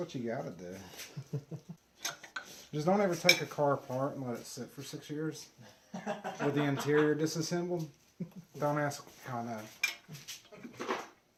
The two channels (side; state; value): both; identical; correlation 1.00